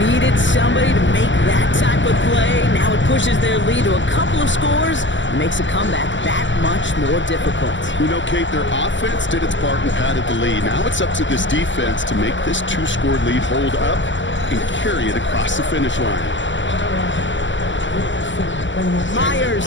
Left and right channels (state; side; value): late; right; 0.54 ms